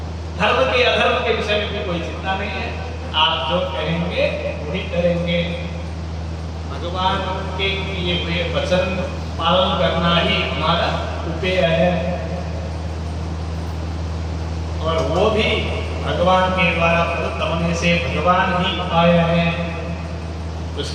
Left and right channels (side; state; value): both; identical; correlation 1.00